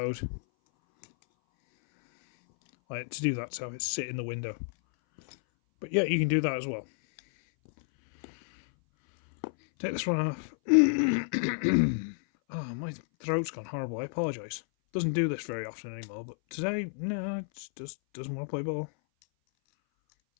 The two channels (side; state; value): right; silent; 57 dB below the other